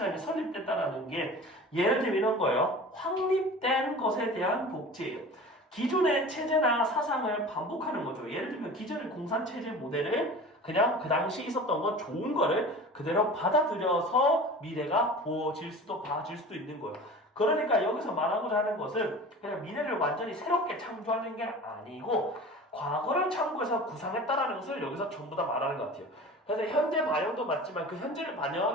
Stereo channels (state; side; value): normal; both; correlation 0.38